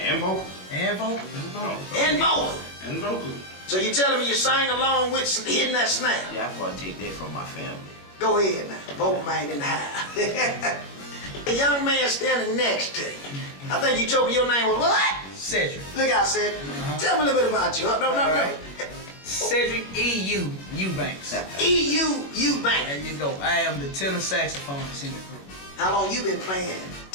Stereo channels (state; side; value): late; right; 21 ms